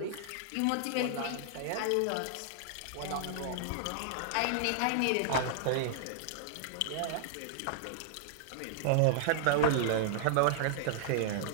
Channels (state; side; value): different; both; correlation -0.01